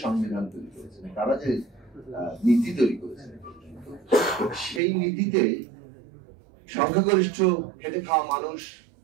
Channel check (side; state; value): left; drops out; at 4.8 s